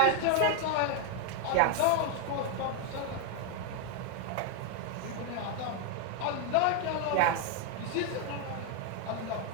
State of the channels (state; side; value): different; both; correlation 0.00